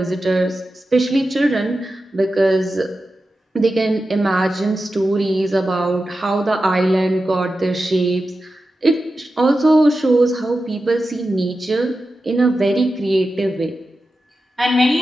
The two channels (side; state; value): both; normal; correlation 0.92